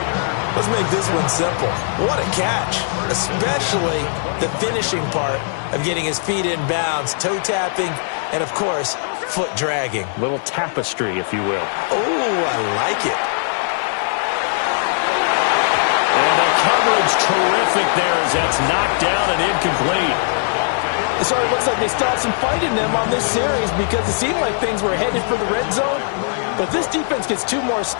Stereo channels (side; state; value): right; silent; digital silence